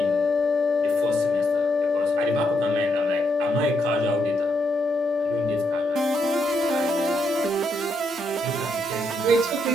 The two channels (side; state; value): both; normal; correlation 0.78